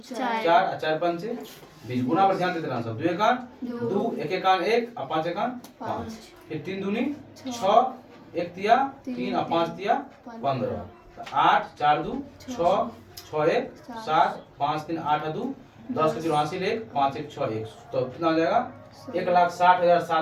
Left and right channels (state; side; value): identical; both; correlation 1.00